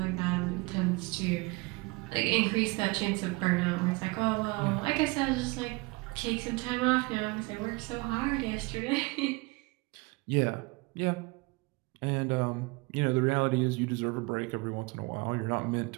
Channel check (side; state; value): left; quieter; 25.4 dB